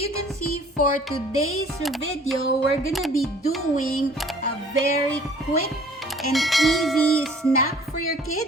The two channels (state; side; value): normal; both; correlation 0.53